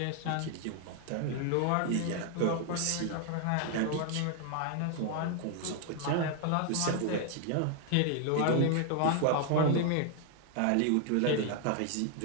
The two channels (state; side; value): different; both; correlation 0.00